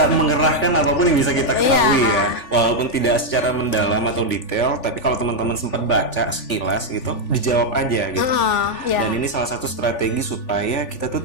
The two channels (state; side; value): late; right; 3.4 ms